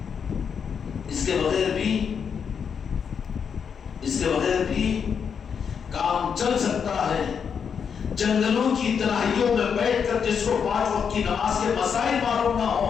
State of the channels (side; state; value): right; quieter; 6.9 dB